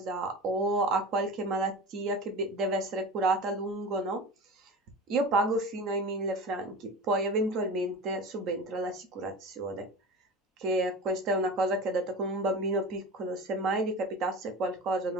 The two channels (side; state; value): both; normal; correlation 0.31